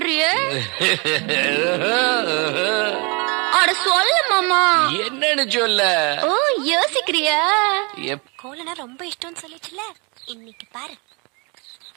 அட சொல்ல மாமா. என்னன்னு சொல்ல? ஓ, யோசிக்கிறியா? கோலனா ரொம்ப இஷ்டம்னு சொல்லிச்சுல, இன்னைக்கு பாரு.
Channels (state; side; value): quieter; left; 30.8 dB